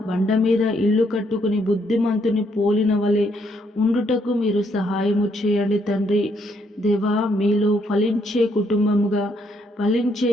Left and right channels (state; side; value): normal; both; correlation 0.72